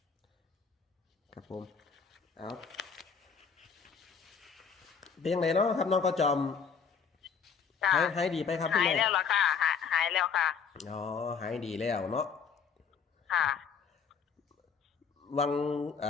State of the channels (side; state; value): right; quieter; 6.2 dB